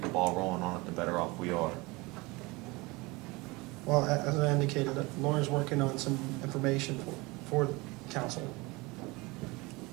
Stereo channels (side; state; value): left; quieter; 24.1 dB